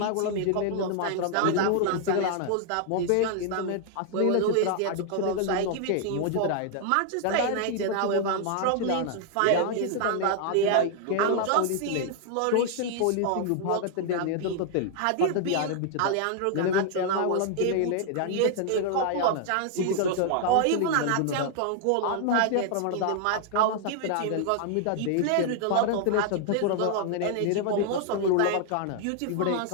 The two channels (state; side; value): different; both; correlation 0.00